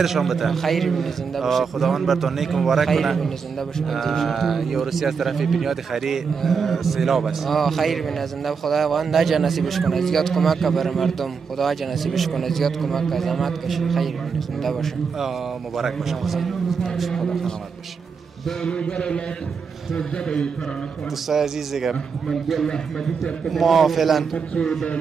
بده. خیر بینه زنده باشه. خداوند براتون نیک مبارک کنه. خیر بینه زنده باشه. یه روسی از طرف بنیاد خیری سیلاب است. خیر بینه زنده خداوند نجا نصیبش کنه. زیاد کمک بر مردم. خدا نجا نصیبش کنه. زیاد کمک زحمت کشه. خیر بینه زنده باشه. مبارک باشه. خدا سلامت باشه. دوستای عزیز دیگه ما فعلا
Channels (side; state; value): left; quieter; 5.7 dB